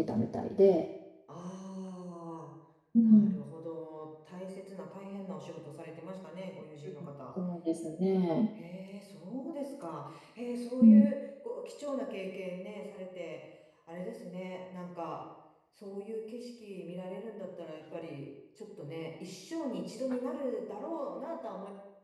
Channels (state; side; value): identical; both; correlation 1.00